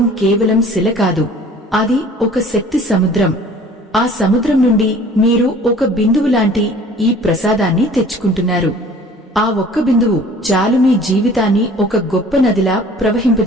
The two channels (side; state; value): both; normal; correlation 0.50